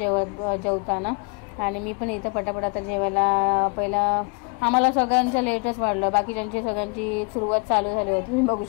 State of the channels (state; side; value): quieter; right; 34.3 dB